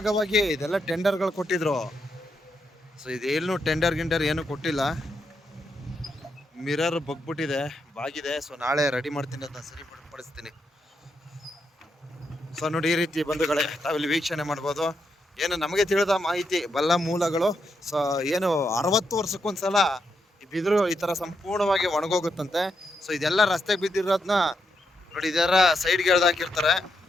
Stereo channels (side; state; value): both; normal; correlation 0.82